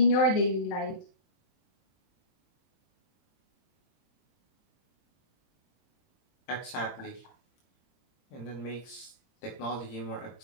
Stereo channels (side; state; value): right; late; 22 ms